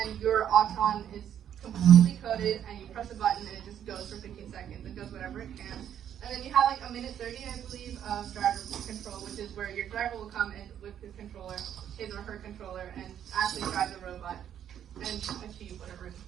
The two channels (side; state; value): left; quieter; 9.8 dB